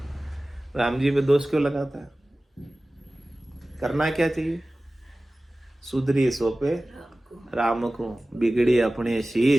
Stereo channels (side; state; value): both; normal; correlation 0.97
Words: राम जी पे दोष क्यों लगाता है? करना क्या चाहिए? सुधरी सोपे राम को, बिगड़ी अपने